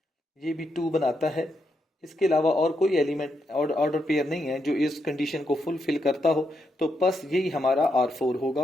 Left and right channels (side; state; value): both; normal; correlation 0.81